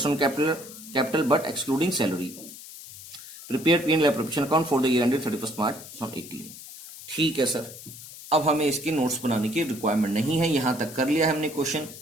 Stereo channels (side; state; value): left; noise; hiss, 15 dB below the sound